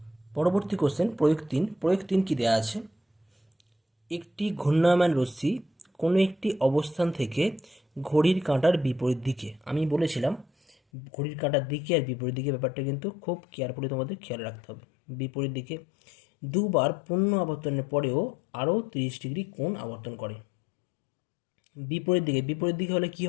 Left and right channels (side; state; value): right; drops out; at 10.8 s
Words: পরবর্তী কোশ্চেন প্রয়োগ 3 কি দেওয়া আছে, একটি ঘূর্ণায়মান রশ্মি কোনো একটি অবস্থান থেকে ঘড়ির কাঁটার বিপরীত দিকে, আমি বলেছিলাম ঘড়ির কাঁটার দিকে আর বিপরীত দিকে ব্যাপারটা কিন্তু খুব কেয়ারফুলি তোমাদের খেয়াল রাখতে হবে। বিপরীত দিকে দুবার পূর্ণ আবর্তনের পরেও আরও 30 ডিগ্রি কোণ আবর্তন করে। বিপরীত দিকে হলে কি